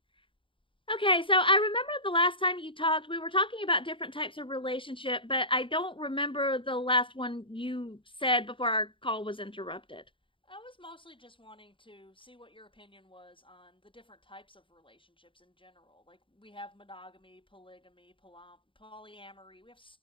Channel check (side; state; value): right; late; 0.25 ms